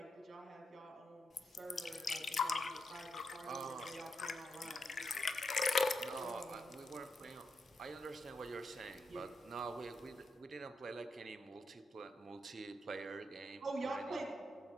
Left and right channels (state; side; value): normal; both; correlation 0.83